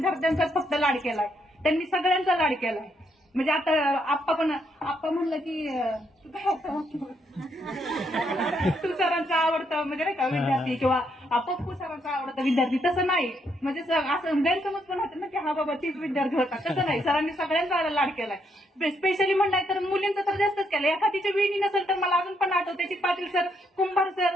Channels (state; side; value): normal; both; correlation 0.75